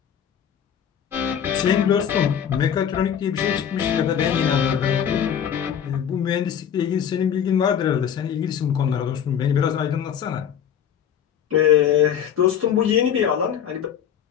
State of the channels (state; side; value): quieter; right; 8.7 dB